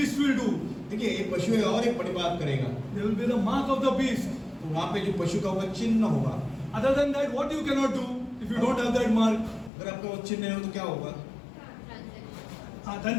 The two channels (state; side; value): drops out; right; at 9.7 s